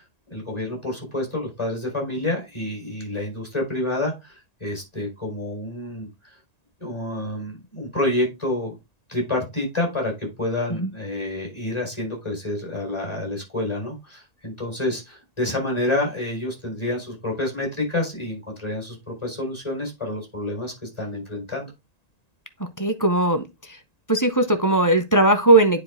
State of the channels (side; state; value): right; late; 1.9 ms